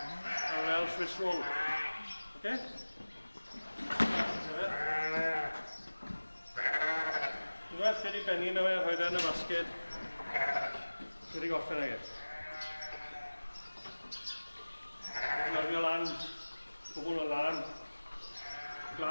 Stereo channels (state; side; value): inverted; both; correlation -1.00